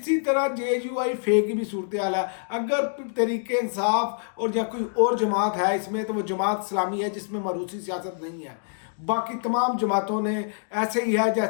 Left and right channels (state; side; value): silent; right; digital silence